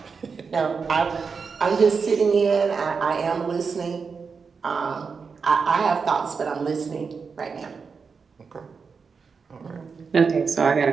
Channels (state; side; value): quieter; left; 5.4 dB